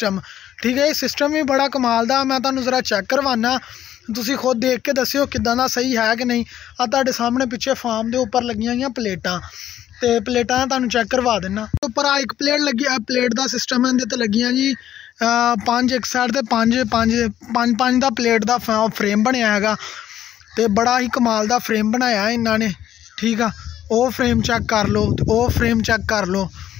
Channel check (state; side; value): quieter; right; 11.4 dB